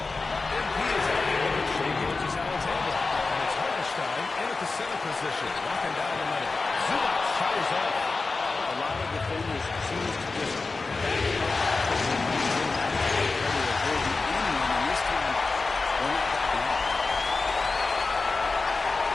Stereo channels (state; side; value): quieter; right; 3.9 dB